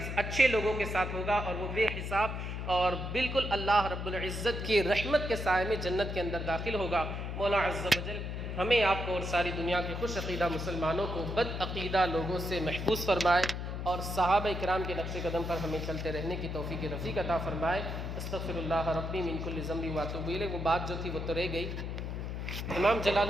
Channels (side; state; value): left; noise; hum, 5 dB below the sound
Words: اچھے لوگوں کے ساتھ ہوگا، اور وہ بے حساب اور بالکل اللہ رب العزت کی رحمت کے سائے میں جنت کے اندر داخل ہوگا۔ مولا عز و جل ہمیں، آپ کو اور ساری دنیا کے خوش عقیدہ مسلمانوں کو بد عقیدہ لوگوں سے محفوظ فرمائے، اور صحابہ اکرام کے نقش قدم پر ہمیں چلتے رہنے کی توفیق رفیق عطا فرمائے۔ استغفر اللہ ربی من کل ذنب واتوب الیہ۔ وہ بات جو تھی وہ تو رہ گئی۔ امام جلال